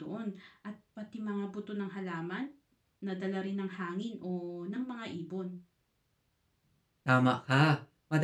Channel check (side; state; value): both; identical; correlation 1.00